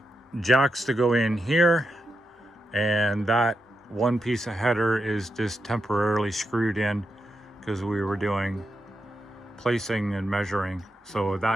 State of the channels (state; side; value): normal; both; correlation 0.85